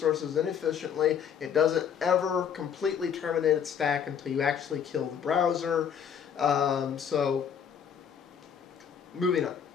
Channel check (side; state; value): right; quieter; 7.9 dB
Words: inefficiently. It doesn't ever completely terminate its stack until you actually kill the browser. So moving on.